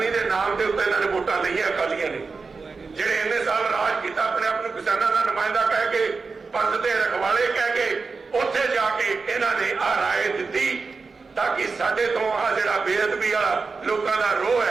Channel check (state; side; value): quieter; left; 4.4 dB